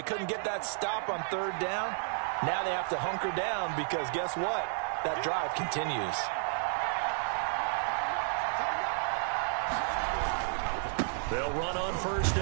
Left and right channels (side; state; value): left; silent; 57 dB below the other